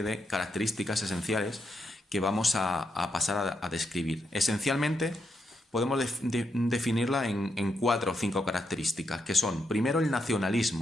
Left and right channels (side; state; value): both; normal; correlation 0.82